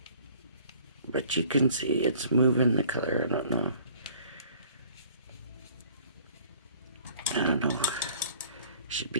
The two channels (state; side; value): inverted; both; correlation -0.54